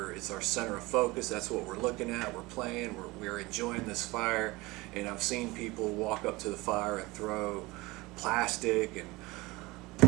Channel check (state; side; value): quieter; left; 22.0 dB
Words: it's our center of focus. That's what we're looking at. We're playing. We're enjoying this fire. And I've seen people walk up to the fire and throw plastic, and